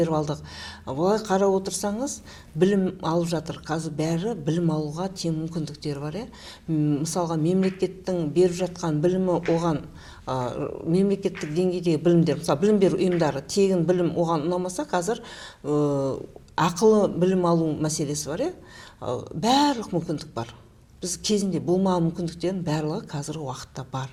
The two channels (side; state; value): both; identical; correlation 1.00